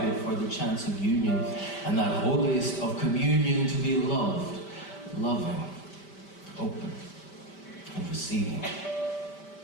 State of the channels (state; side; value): late; right; 5.1 ms